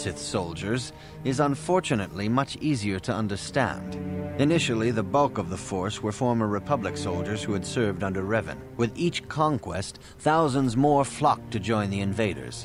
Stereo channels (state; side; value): identical; both; correlation 1.00